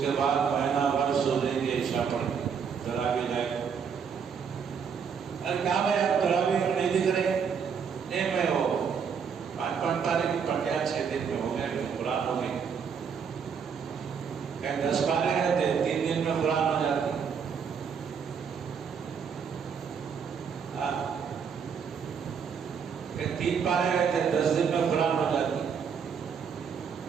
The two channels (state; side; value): quieter; left; 6.7 dB